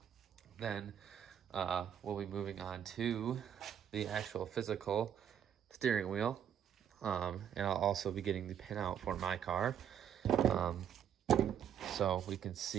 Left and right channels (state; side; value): quieter; left; 9.1 dB